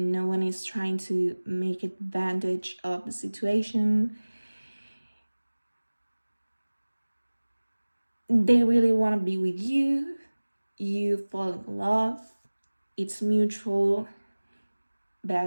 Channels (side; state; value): both; inverted; correlation -1.00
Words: one is trying to make advantage of the situation. They really want to be with you. You fall in love. It's mutual,